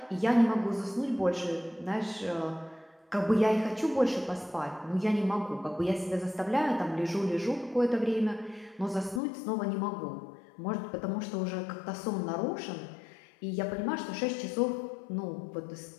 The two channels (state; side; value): drops out; right; at 9.2 s